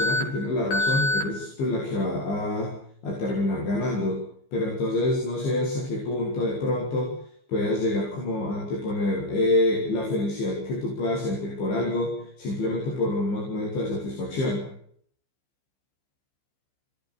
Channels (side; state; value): right; late; 15 ms